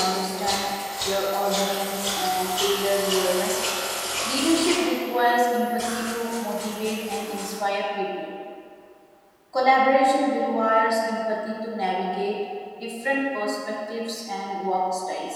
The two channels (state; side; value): identical; both; correlation 1.00